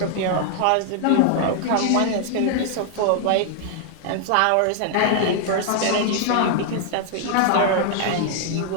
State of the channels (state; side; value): different; both; correlation 0.00